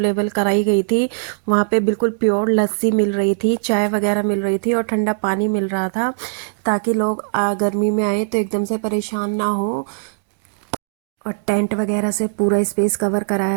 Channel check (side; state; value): left; silent; digital silence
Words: कराई गई थी। वहाँ पे बिल्कुल प्योर लस्सी मिल रही थी, चाय वगैरह मिल रही थी और ठंडा पानी मिल रहा था, ताकि लोग गर्मी में आए तो एकदम से परेशान ना हो। और टेंट वगैरह से पूरा स्पेस कवर